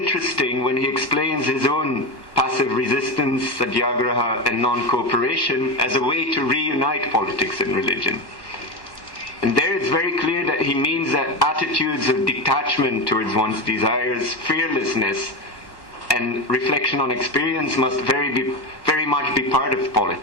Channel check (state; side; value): late; right; 1.1 ms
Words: when he explains his own passive resistance, satyagraha, and non-cooperation as a way to reunite politics and religion. And there it's very clear that he means that attitudes of detachment towards one's desires, fearlessness, and reflection on experience must very much be part of